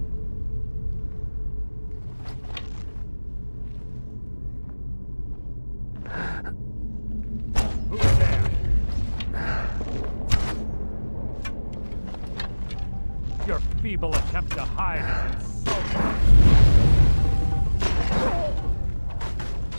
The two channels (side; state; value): both; inverted; correlation -1.00